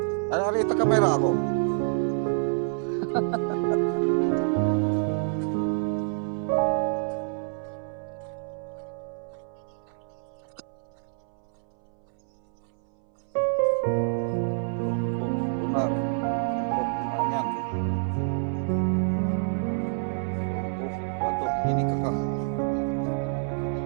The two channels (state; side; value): silent; left; 60 dB below the other